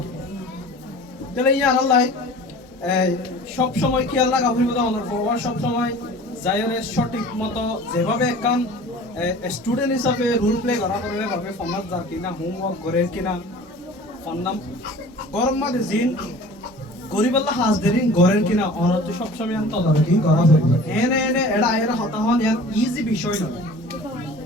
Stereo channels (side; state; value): both; normal; correlation 0.43